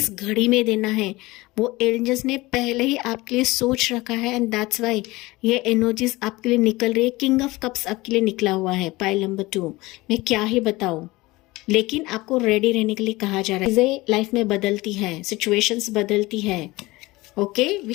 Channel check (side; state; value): right; quieter; 20.7 dB